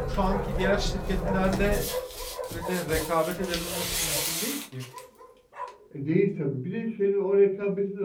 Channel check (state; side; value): identical; both; correlation 1.00